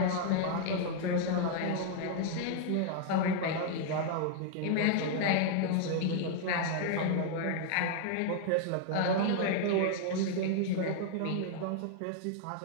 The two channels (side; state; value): both; different; correlation 0.00